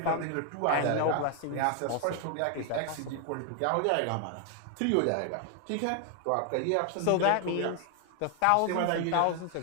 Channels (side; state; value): both; different; correlation 0.00